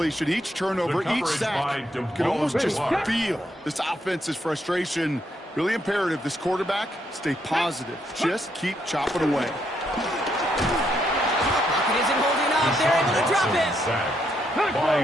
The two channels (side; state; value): both; normal; correlation 0.76